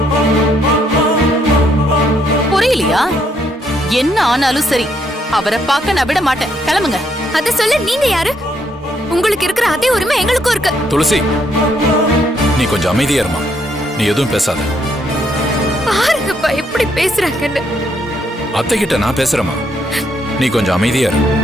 புரியலையா? என்ன ஆனாலும் சரி, அவரை பார்க்க நான் விட மாட்டேன். கிளம்புங்க. அத சொல்ல நீங்க யாரு? உங்களுக்கு இருக்கிற அதே உரிமை எங்களுக்கும் இருக்கு. துளசி, நீ கொஞ்சம் அமைதியா இருமா. நீ எதுவும் பேசாத. பாருங்கப்பா எப்படி பேசுறாங்கன்னு. அத்தை கிட்ட நான் பேசுறேமா. நீ கொஞ்சம் அமைதியா இரு.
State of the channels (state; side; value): normal; both; correlation 0.73